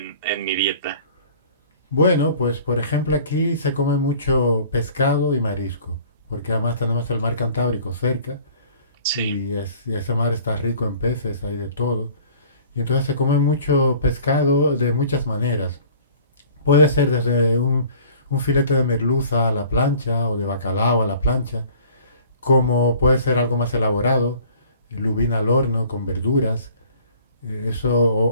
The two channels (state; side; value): inverted; both; correlation -0.50